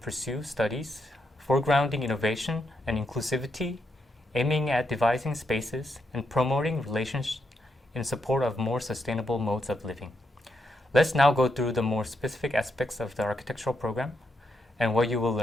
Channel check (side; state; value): both; normal; correlation 0.80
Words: studies, foregrounding innovation and inclusivity, aiming at devising spaces and promoting relationships in support of more sustainable modes of living. Let's now go through the more specific aspects of the architectural program and what you will